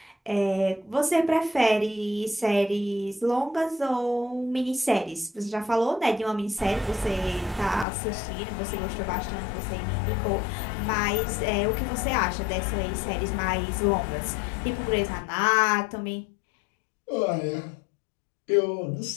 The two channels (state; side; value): drops out; right; at 7.9 s